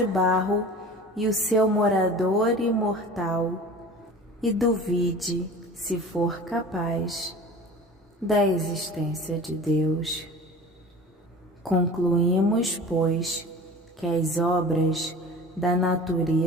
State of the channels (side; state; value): both; normal; correlation 0.40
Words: barro e o seu morador imortal, e duvide, se for capaz, da existência de Deus. Concluímos, pois, que as obras da